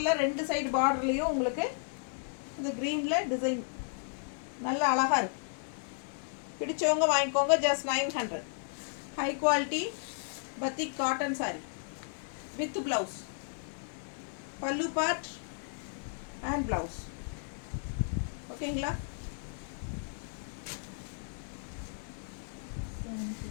2 சைடு பார்டர்லேயும் உங்களுக்கு இந்த க்ரீனில் டிசைன் நல்ல அழகாக இருக்குது. பிடிச்சவங்க வாங்கிக்கோங்க. Just 900. High quality batik cotton sari with blouse. Pallu part and blouse. ஓகேங்களா?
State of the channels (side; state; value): right; silent; digital silence